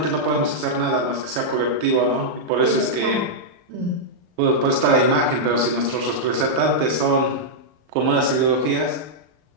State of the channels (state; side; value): late; left; 39 ms